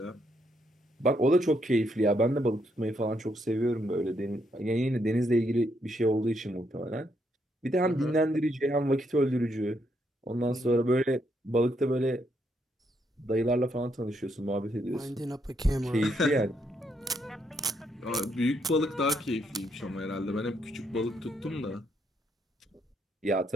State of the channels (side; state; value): both; normal; correlation 0.76